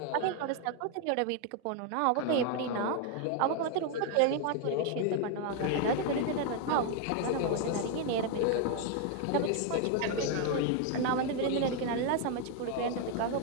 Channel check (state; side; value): different; both; correlation 0.01